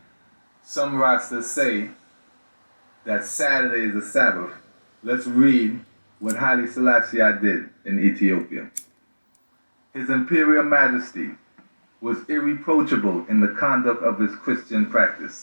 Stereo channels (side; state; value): both; inverted; correlation -1.00